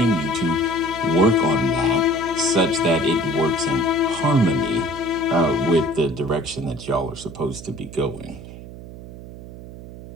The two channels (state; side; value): noise; right; hum, 14 dB below the sound